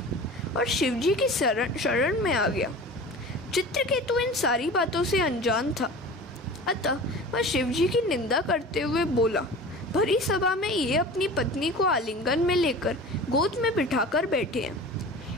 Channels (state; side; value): normal; both; correlation 0.37